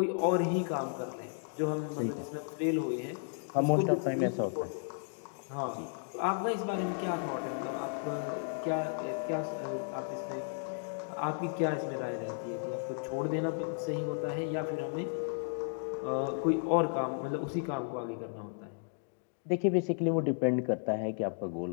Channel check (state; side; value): silent; right; digital silence